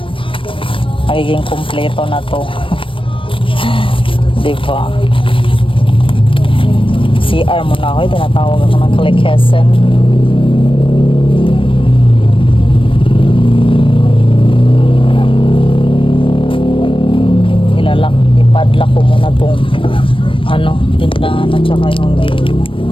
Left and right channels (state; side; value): late; right; 0.25 ms